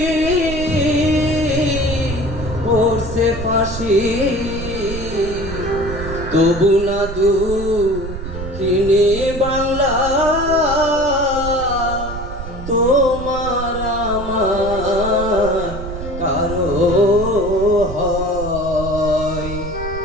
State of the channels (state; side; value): noise; right; rumble, 9 dB below the sound